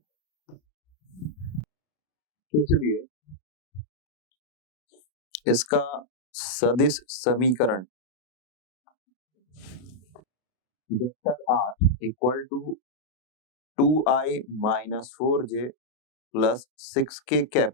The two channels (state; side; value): late; right; 32 ms